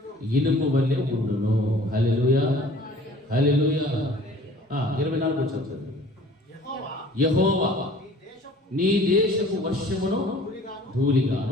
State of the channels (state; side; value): normal; both; correlation 0.50